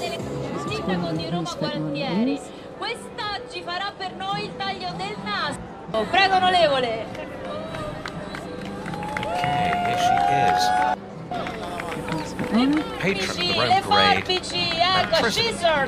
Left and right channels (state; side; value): identical; both; correlation 1.00